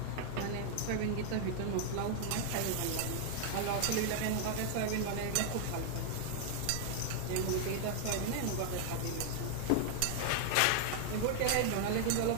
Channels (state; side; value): different; both; correlation 0.00